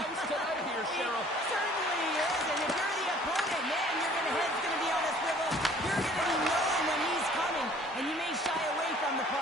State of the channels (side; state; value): both; normal; correlation 0.54